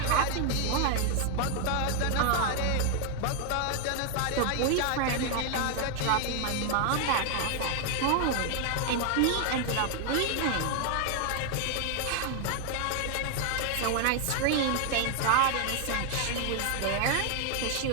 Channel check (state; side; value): different; both; correlation 0.00